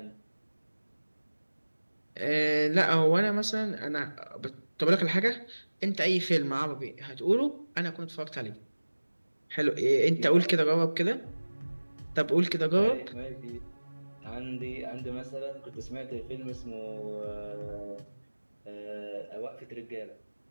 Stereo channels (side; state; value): both; inverted; correlation -1.00